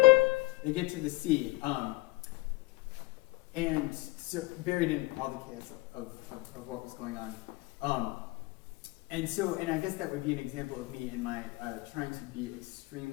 they get to the C. And so buried in all the chaos of what was going on. And I guess that would be an example of me in my trying to be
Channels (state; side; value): quieter; right; 21.0 dB